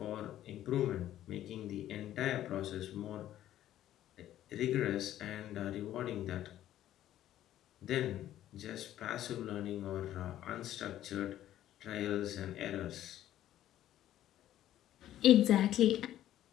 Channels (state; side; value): quieter; right; 12.6 dB